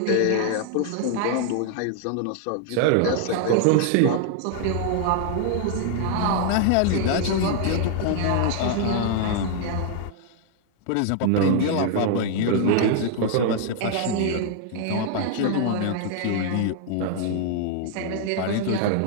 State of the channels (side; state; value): both; different; correlation 0.00